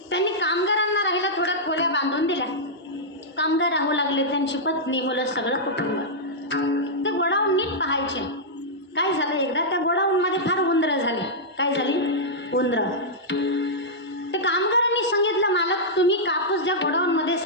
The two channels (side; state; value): both; normal; correlation -0.09